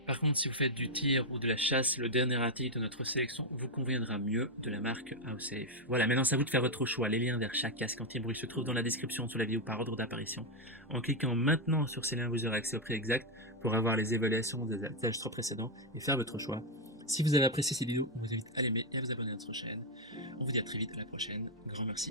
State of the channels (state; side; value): normal; both; correlation 0.02